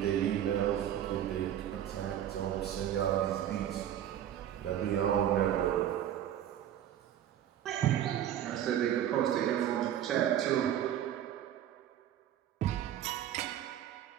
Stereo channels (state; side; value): quieter; left; 11.0 dB